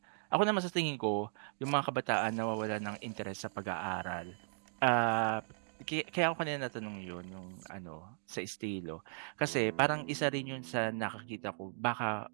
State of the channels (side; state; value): left; silent; digital silence